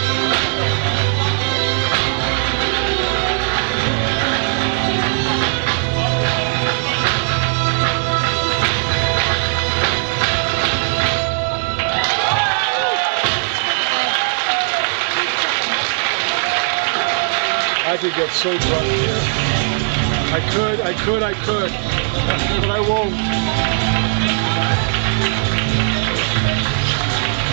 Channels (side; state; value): left; silent; 67 dB below the other